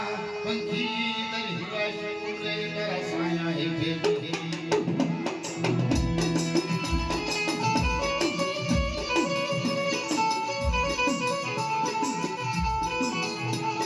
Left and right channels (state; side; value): identical; both; correlation 1.00